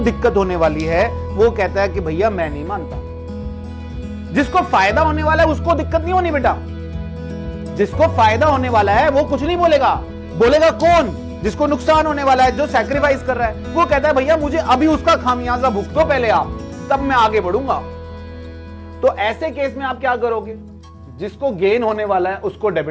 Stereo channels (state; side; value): identical; both; correlation 1.00